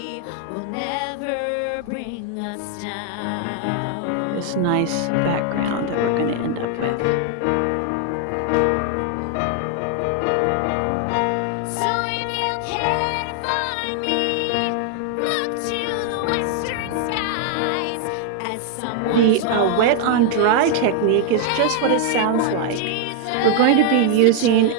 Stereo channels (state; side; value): different; both; correlation 0.00